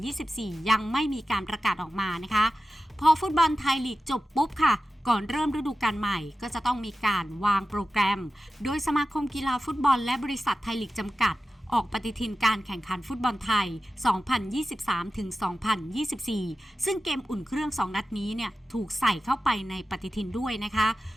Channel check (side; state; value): both; normal; correlation 0.94